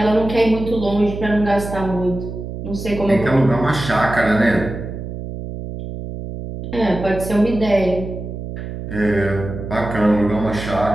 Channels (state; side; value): noise; right; hum, 8 dB below the sound